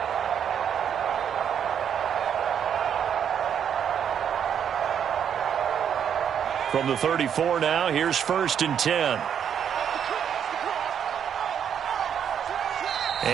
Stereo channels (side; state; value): left; quieter; 8.4 dB